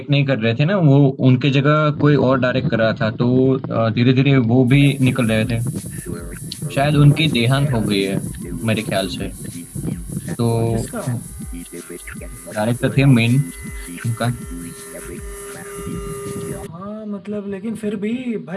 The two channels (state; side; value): identical; both; correlation 1.00